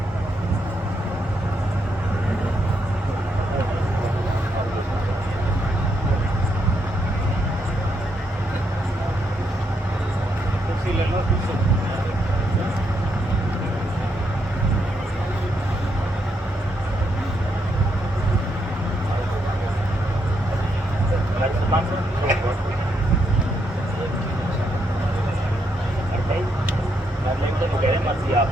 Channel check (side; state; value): both; normal; correlation 0.78